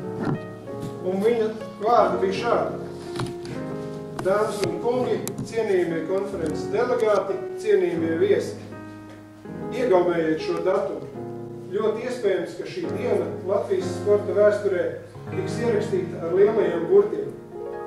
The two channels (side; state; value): both; identical; correlation 1.00